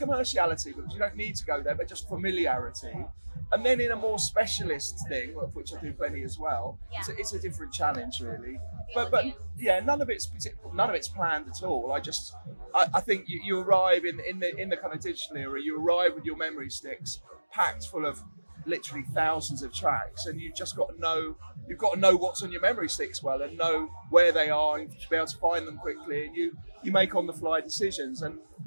because you don't need to go there, but just familiarity. And then in a more specialist thing, of which I do plenty as well, it's a different challenge really. But none of it's planned at all. I think you arrive in the kind of digital era. You arrive with your memory sticks packed full of literally thousands of tracks, and you've just got to know what's on your memory sticks well, and know where they are, and to be able to find them quickly, and you make on the fly decisions. And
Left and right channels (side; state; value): both; inverted; correlation -1.00